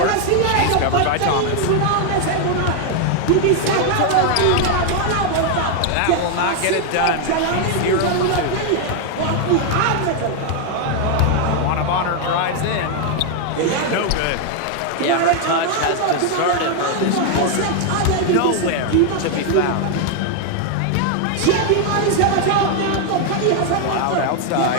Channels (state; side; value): different; both; correlation 0.00